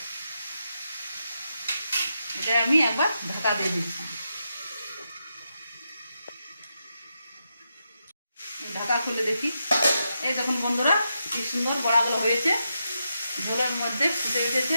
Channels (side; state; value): both; inverted; correlation -0.85